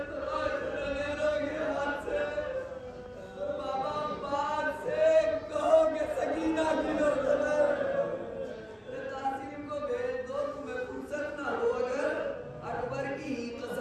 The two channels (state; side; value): identical; both; correlation 1.00